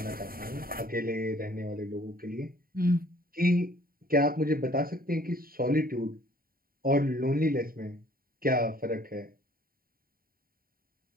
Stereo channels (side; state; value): left; late; 0.43 ms